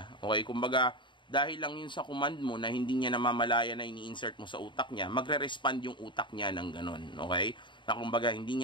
Okay, kumbaga, dahil lang yun sa command mo na hindi niya namamalaya na ini-insert mo sa utak niya, magre-respond yung utak niya ng ganun. Okay? Na kumbaga, hindi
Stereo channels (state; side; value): late; right; 0.23 ms